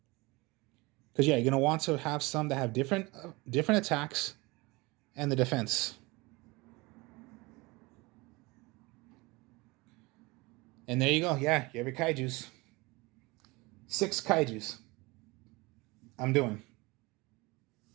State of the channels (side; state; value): left; quieter; 23.9 dB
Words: Because yeah, you're going to want to have some that have different attacks and the defense. And there you go. Yeah, you have your kaijus. 6 kaijus. I'm doing.